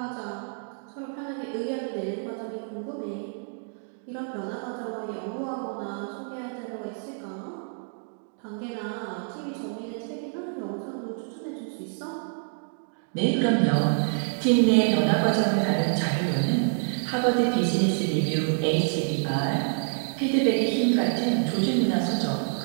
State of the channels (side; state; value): left; silent; 60 dB below the other